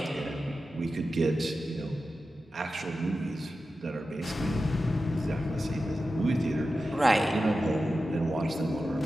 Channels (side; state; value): both; normal; correlation 0.92